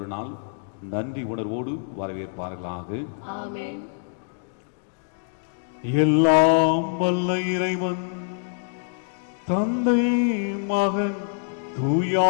நாள் நன்றி உணர்வோடு வரவேற்பார்களாக. எல்லாம் வல்ல இறைவன் தந்தை மகன்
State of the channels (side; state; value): right; silent; digital silence